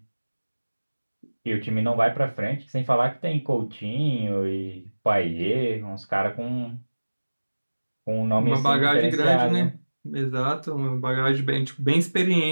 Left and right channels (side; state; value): both; inverted; correlation -1.00